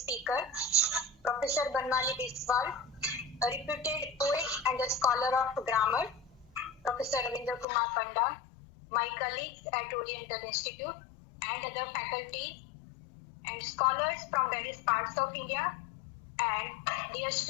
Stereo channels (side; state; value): right; drops out; at 7.7 s